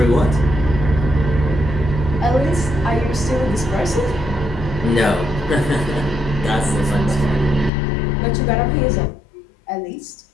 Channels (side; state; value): right; drops out; at 7.7 s